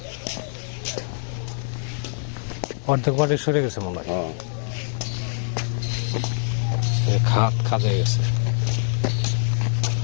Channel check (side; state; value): right; silent; digital silence